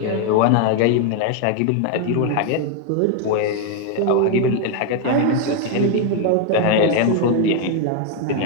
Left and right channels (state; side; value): different; both; correlation 0.01